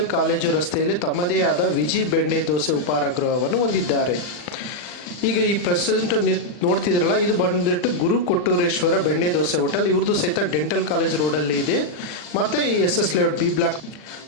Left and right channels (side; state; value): right; late; 40 ms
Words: ಕಾಲೇಜು ರಸ್ತೆಯಲ್ಲಿ ತಮ್ಮದೇ ಆದ ವಿಜಿ ಬೆಣ್ಣೆ ದೋಸೆ ಉಪಹಾರ ಗೃಹವನ್ನು ಹೊಂದಿದ್ದಾರೆ. ಈಗ ಈ ಪ್ರೆಸೆಂಟ್ ನೋಡ್ತಿದ್ರಲ್ಲ, ಇದು ಬಂದ್ಬಿಟ್ಟು ಗುರು ಕೊಟ್ಟೂರೇಶ್ವರ ಬೆಣ್ಣೆ ದೋಸೆ ಹೋಟೆಲ್. ಇವ್ರದ್ದು ಸಹಿತ ಡೆಂಟಲ್ ಕಾಲೇಜ್ ರೋಡಲ್ಲಿ ಇದೆ. ಮತ್ತು ಈ SS ಲೇಔಟ್